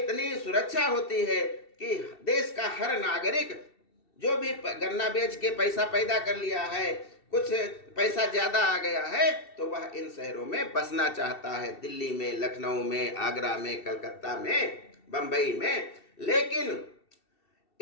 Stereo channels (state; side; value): late; right; 2.7 ms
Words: सुरक्षा होती है कि देश का हर नागरिक जो भी गन्ना बेच के पैसा पैदा कर लिया है, कुछ पैसा ज़्यादा आ गया है, तो वह इन शहरों में बसना चाहता है, दिल्ली में, लखनऊ में, आगरा में, कलकत्ता में, बम्बई में। लेकिन